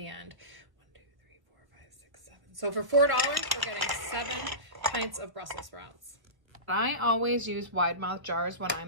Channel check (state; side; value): late; left; 1.1 ms